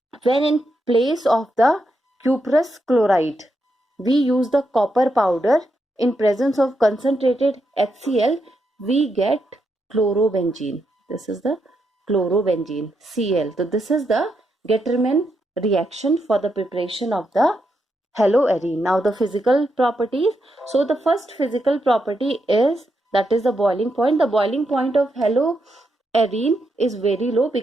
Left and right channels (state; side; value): normal; both; correlation 0.82